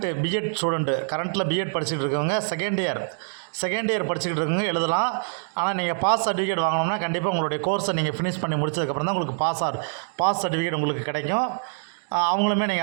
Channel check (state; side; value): silent; left; 62 dB below the other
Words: பிஎட் ஸ்டூடெண்ட்டு கரண்ட்டில் பிஎட் படிச்சுட்டு இருக்கவங்க செகண்ட் இயர் படிச்சுக்கிட்டு இருக்கவங்க எழுதலாம். ஆனால் நீங்கள் பாஸ் சர்டிஃபிகேட் வாங்கணும்னா கண்டிப்பாக உங்களுடைய கோர்ஸை நீங்கள் ஃபினிஷ் பண்ணி முடிச்சதுக்கப்புறம் தான் உங்களுக்கு பாஸ் சர்டிஃபிகேட் உங்களுக்கு கிடைக்கும். அவங்களுமே